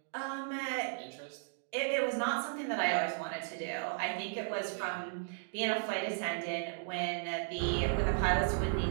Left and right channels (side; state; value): left; silent; digital silence